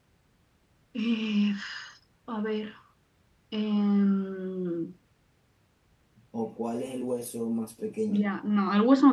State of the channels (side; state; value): both; identical; correlation 1.00